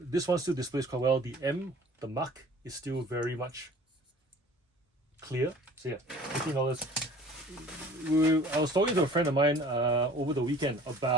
This one still displays quite well. The mark is still very much clear. So yeah, $15. I was talking to a friend of mine over the weekend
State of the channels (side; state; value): both; normal; correlation 0.47